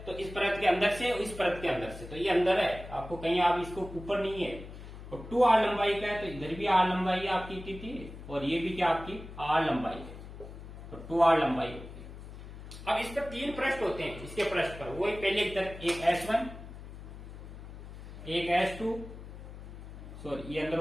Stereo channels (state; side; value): noise; left; hum, 13 dB below the sound